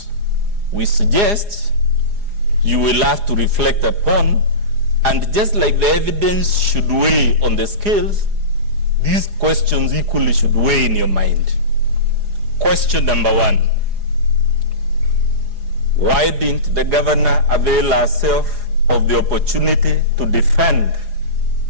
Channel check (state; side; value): late; left; 4.9 ms